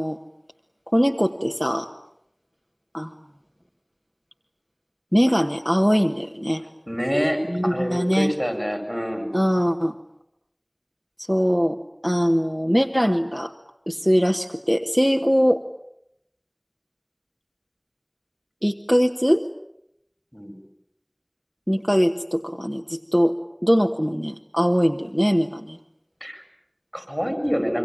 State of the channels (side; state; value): both; identical; correlation 1.00